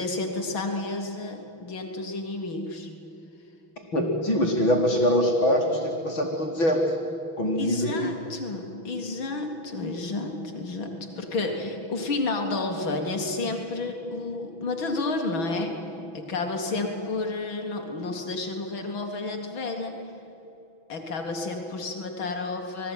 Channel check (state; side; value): late; right; 6.1 ms